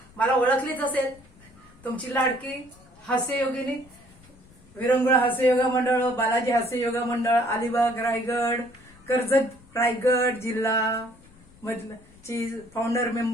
मला ओळखलीच असेल तुमची लाडकी हास्ययोगिनी विरंगुळा हास्य योगा मंडळ, बालाजी हास्य योगा मंडळ, अलिबाग रायगड, कर्जत रायगड जिल्हा मधलं ची फाउंडर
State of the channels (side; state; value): left; noise; rumble, 26 dB below the sound